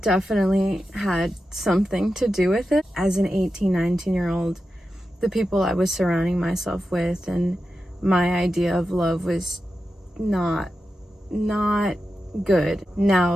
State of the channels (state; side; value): normal; both; correlation 0.90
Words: had something to do with it. As an 18, 19-year-old, the people I was surrounding myself with and my idea of love was not good.